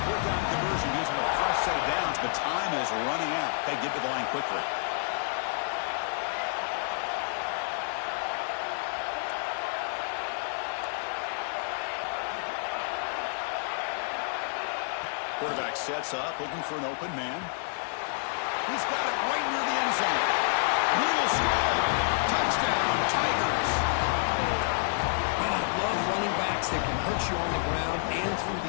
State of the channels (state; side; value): silent; right; digital silence